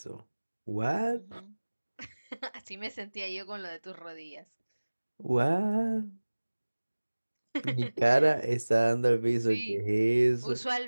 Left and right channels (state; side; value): inverted; both; correlation -1.00